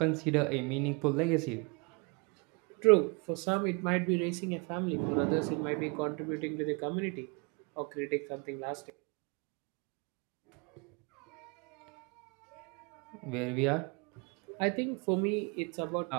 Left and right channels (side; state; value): left; quieter; 31.9 dB